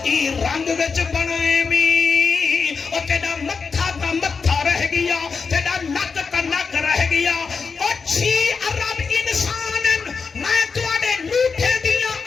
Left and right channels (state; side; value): quieter; right; 5.2 dB